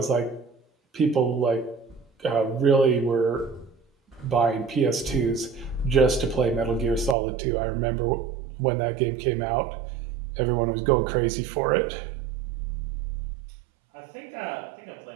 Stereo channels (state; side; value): drops out; left; at 7.2 s